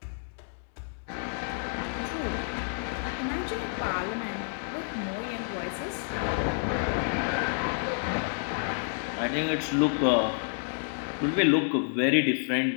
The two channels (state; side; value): silent; right; digital silence